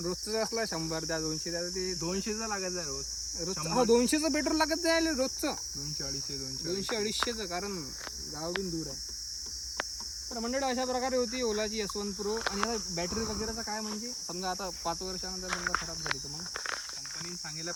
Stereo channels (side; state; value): both; identical; correlation 1.00